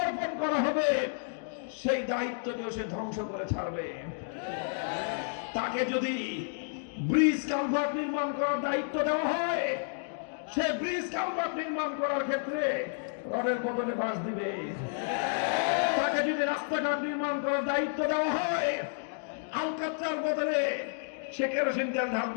অর্পণ করা হবে, সেই দায়িত্বকেও সে ধ্বংস করে ছাড়বে। তাকে যদি ব্রিজ কালভার্ট নির্মাণ করার দায়িত্ব দেওয়া হয়, সে ব্রিজ কালভার্ট নির্মাণ করার ক্ষেত্রে রডের বদলে বাঁশ দিবে। তাকে যদি রাস্তাঘাট নির্মাণ করার দায়িত্ব দেওয়া হয়, আলকাতরার বদলে সে কেরোসিন তেল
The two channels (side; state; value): right; silent; digital silence